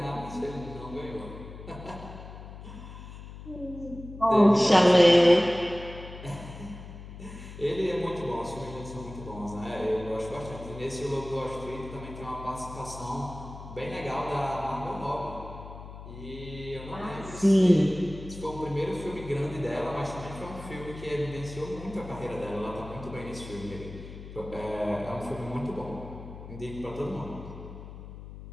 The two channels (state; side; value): noise; left; hum, 13 dB below the sound